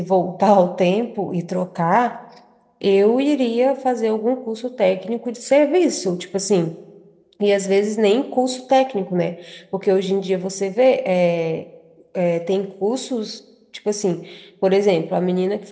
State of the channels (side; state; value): both; identical; correlation 1.00